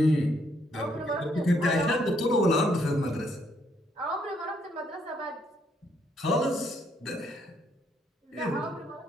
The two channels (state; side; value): normal; both; correlation 0.72